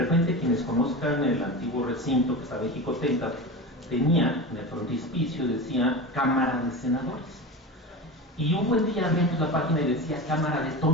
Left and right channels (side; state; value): both; normal; correlation 0.27